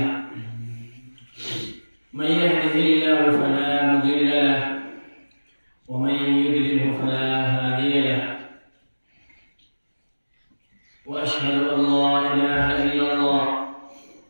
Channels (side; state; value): both; inverted; correlation -1.00